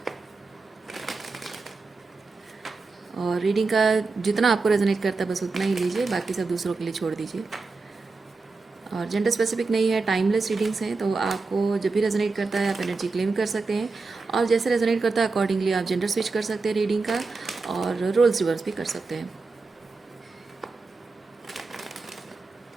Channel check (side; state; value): left; quieter; 4.0 dB